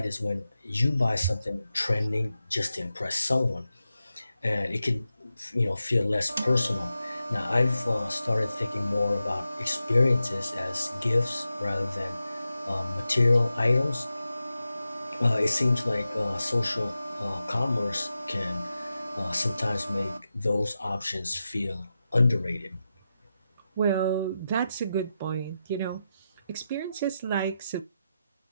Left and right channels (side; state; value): both; inverted; correlation -0.90